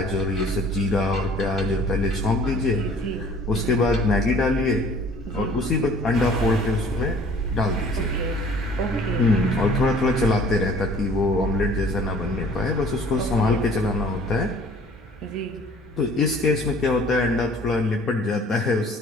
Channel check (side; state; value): both; normal; correlation 0.51